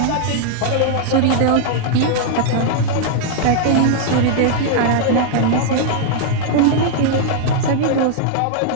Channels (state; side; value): different; both; correlation -0.01